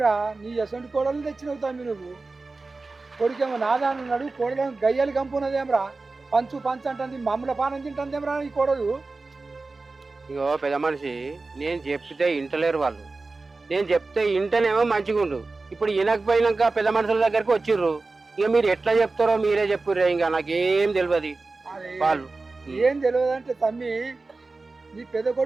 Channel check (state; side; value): quieter; left; 3.6 dB